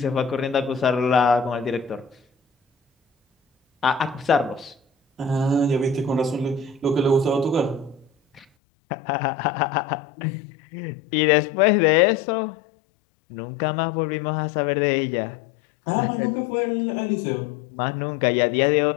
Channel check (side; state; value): right; drops out; at 8.5 s